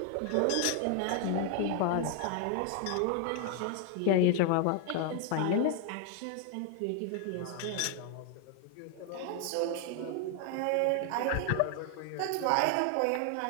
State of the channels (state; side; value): different; both; correlation 0.00